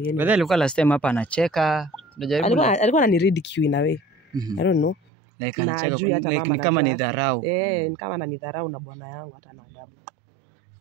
yeye. Wewe alikuwa last time hapa anacheka. Alikuwa ananiridicule in a way. I don't know. Like na juu hata mama kama ni dharau. Ni kama na ni dharau na bwana yangu hata na adabu.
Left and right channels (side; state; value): left; drops out; at 5.0 s